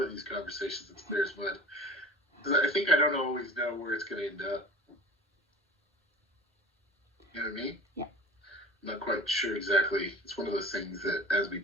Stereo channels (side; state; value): both; normal; correlation 0.39